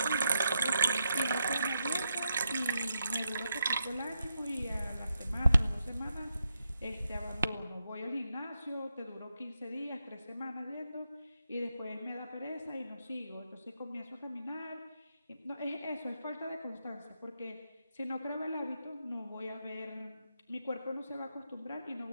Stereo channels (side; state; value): both; inverted; correlation -0.84